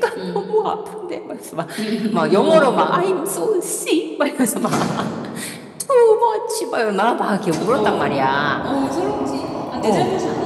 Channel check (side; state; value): both; identical; correlation 1.00